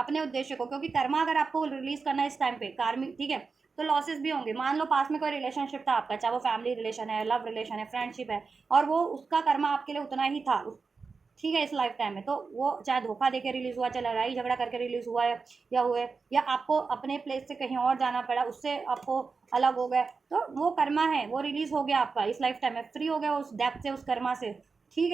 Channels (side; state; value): left; quieter; 4.7 dB